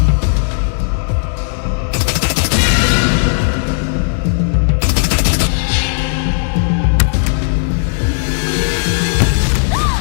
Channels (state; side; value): silent; right; digital silence